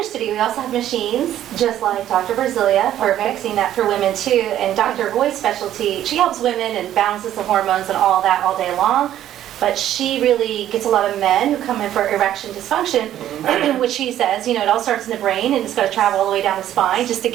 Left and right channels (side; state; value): left; quieter; 11.9 dB